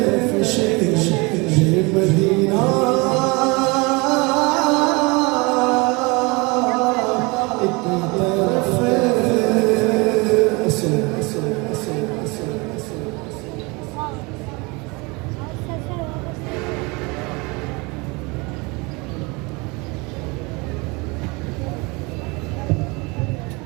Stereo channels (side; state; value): left; quieter; 27.1 dB